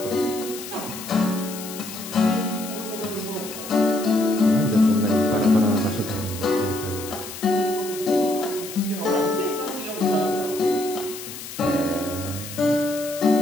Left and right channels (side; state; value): left; noise; hiss, 11 dB below the sound